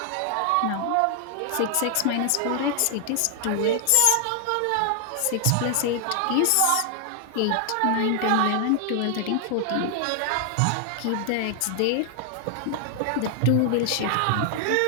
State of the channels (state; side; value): different; both; correlation 0.00